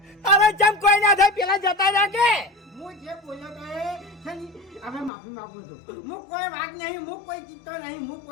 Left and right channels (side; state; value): right; drops out; at 5.1 s